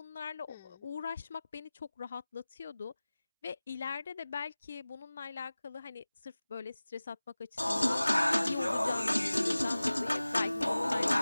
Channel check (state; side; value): inverted; both; correlation -0.98